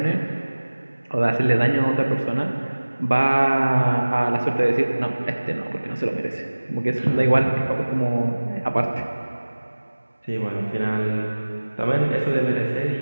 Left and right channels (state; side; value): inverted; both; correlation -1.00